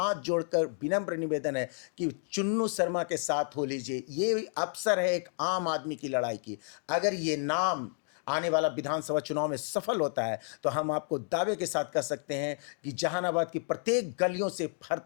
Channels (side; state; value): right; silent; 57 dB below the other